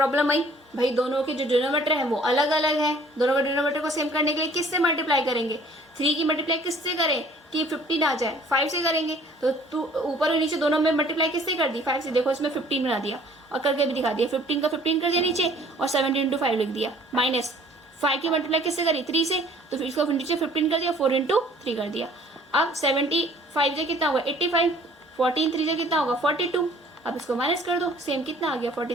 आई भाई, दोनों के जो डिनोमिनेटर है वो अलग अलग है, दोनों के डिनोमिनेटर को सेम करने के लिए किससे मल्टीप्लाई करेंगे, 3 की मल्टीप्लाई किससे करें कि 15 आ जाए, 5 से करेंगे। तो तू ऊपर और नीचे दोनों में मल्टीप्लाई किससे कर दी, 5 से। देखो इसमें 15 बना दिया और करके भी दिखा दिया, 15 का 15 कर दिया नीचे और 17 × 5 लिख दिया, माइनस 5 की मल्टीप्लाई किससे करी, 3 से, तो फिर इसको नीचे 15 कर दिया, 4 × 3 कर दिया। अब 75 से कितना होगा 85, 14 3 से कितना होगा 42। अब इसको माइनस कर दो, सेम कितना आ गया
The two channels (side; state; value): both; normal; correlation 0.54